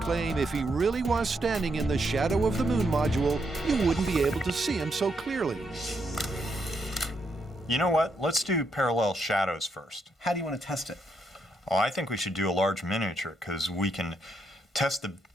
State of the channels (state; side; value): normal; both; correlation 0.78